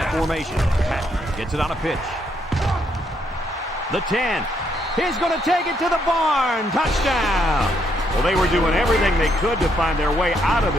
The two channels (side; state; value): both; normal; correlation 0.74